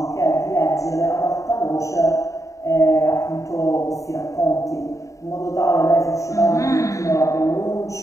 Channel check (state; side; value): late; right; 0.16 ms